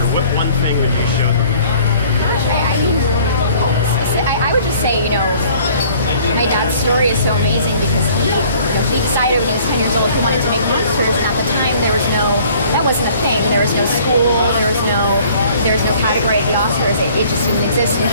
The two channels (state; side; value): inverted; both; correlation -0.54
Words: what one thing would you show them? I would just say, my dad's story is so amazing because he decided when he was 10 years old he wanted to make monsters, and at the time that wasn't a thing. There was no school, there was no category at the Oscars. It just didn't exist. And